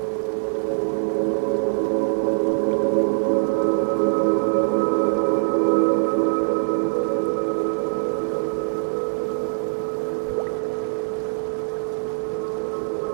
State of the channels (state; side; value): silent; left; digital silence